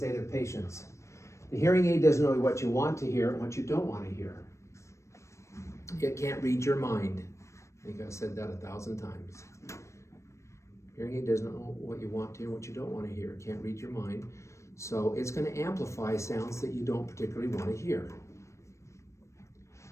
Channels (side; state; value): right; late; 0.14 ms